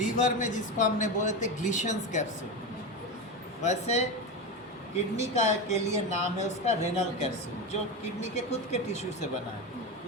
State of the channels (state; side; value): normal; both; correlation 0.18